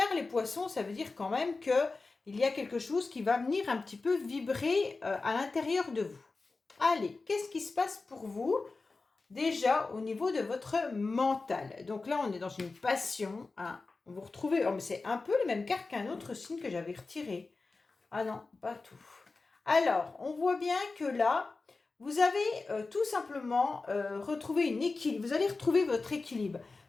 les poissons, ça veut dire quand même qu'il y a quelque chose qui va venir un petit peu vibrer à l'intérieur de vous. Allez, qu'est-ce qui se passe pour vous? Déjà au niveau de votre mental. Donc là, on est dans une passion. Hein. Vous retrouvez, oh, mais c'est un peu les mêmes cartes qu'un autre signe que j'avais retiré. Ah non, pas tout. Alors, on voit bien que là, vous avez tout simplement retrouvé une équilibre. Vous allez retrouver votre équilibre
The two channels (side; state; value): right; quieter; 3.8 dB